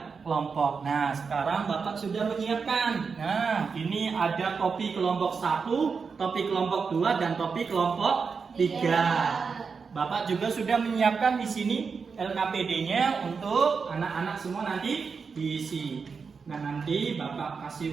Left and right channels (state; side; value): quieter; left; 5.4 dB